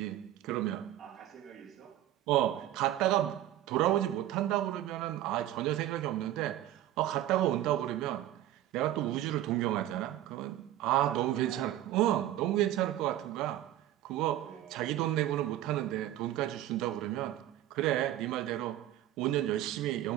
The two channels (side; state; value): left; quieter; 13.3 dB